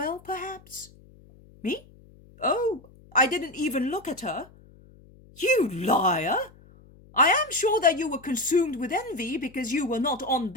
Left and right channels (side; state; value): left; noise; hum, 25 dB below the sound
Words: perhaps? Me? Oh, I didn't even look at her. You liar! I am sure that you were consumed with envy because you were not on